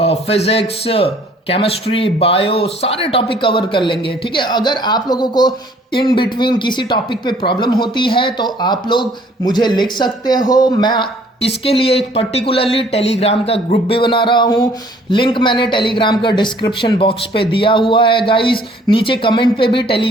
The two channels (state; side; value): normal; both; correlation 0.58